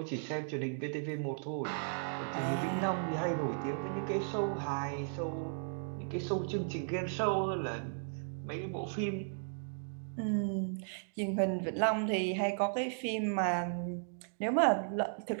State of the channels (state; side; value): silent; left; digital silence